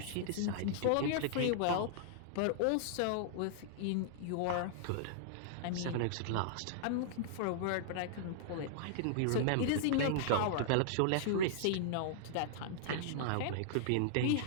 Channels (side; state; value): both; different; correlation -0.01